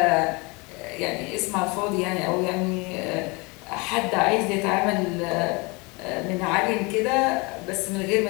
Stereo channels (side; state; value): right; quieter; 27.7 dB